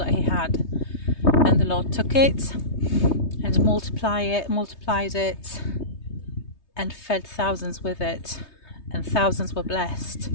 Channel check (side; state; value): right; late; 3.2 ms